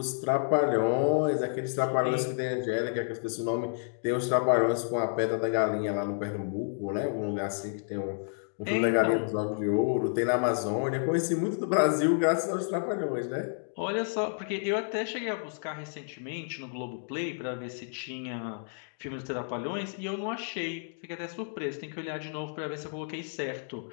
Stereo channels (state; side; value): silent; right; digital silence